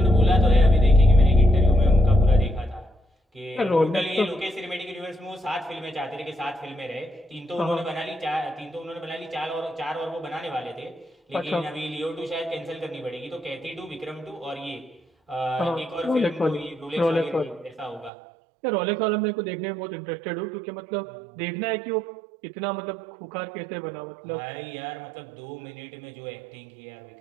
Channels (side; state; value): left; drops out; at 18.1 s